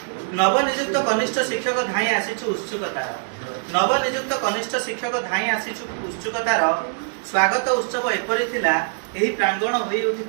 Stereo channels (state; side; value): silent; left; digital silence